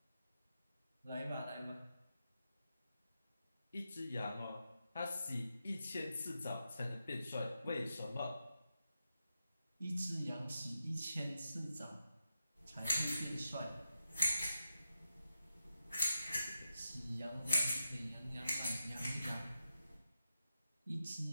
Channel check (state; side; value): inverted; both; correlation -0.88